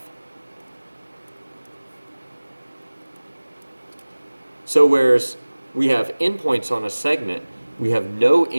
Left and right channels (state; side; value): inverted; both; correlation -1.00